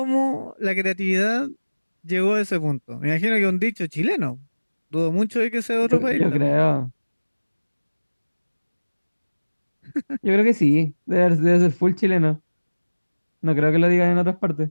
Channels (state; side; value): inverted; both; correlation -1.00